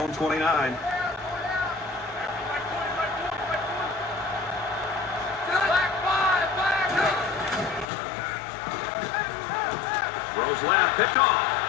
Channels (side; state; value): right; drops out; at 7.9 s